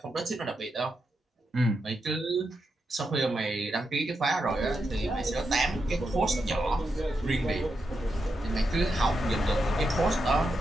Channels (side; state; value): both; normal; correlation 0.85